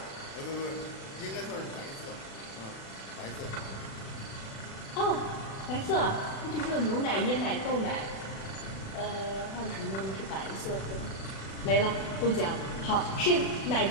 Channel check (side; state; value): right; late; 36 ms